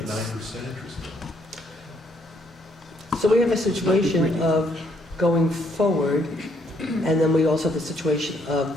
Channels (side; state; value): both; normal; correlation 0.69